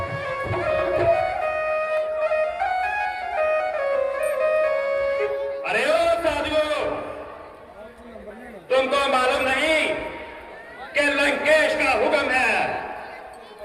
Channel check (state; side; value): identical; both; correlation 1.00